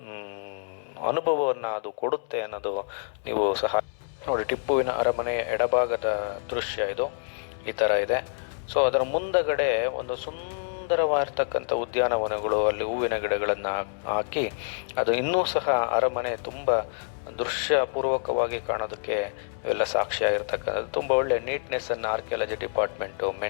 ಅನುಭವವನ್ನು ಅದು ಕೊಡುತ್ತೆ ಅನ್ನೋದು ನೀವು ಸಹ ನೋಡಿ. ಟಿಪ್ಪುವಿನ ಅರಮನೆಯ ಎಡಭಾಗದ ದೃಶ್ಯ ಇದು ಈ ಥರ ಇದೆ. ಸೊ ಅದರ ಮುಂದಗಡೆ ಒಂದು ಸುಂದರವಾಗಿರ್ತಕ್ಕಂಥ ಉದ್ಯಾನವನಗಳು, ಅಲ್ಲಿ ಹೂವಿನ ಗಿಡಗಳನ್ನು ಹಾಕಿ ಅದು ಇನ್ನೂ ಸಹ ಅರಮನೆ ತುಂಬ ದೃಶ್ಯಪೂರ್ವಕವಾಗಿ ಕಾಣೋದಕ್ಕೆ ಇವೆಲ್ಲ ಸಾಕ್ಷಿಯಾಗಿರ್ತಕ್ಕಂಥದ್ದು. ತುಂಬ ಒಳ್ಳೆ ನೀಟ್ನೆಸ್ಸನ್ನು ಆರ್ಕಿಯಾಲಜಿ ಡಿಪಾರ್ಟ್ಮೆಂಟು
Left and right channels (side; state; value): right; silent; 60 dB below the other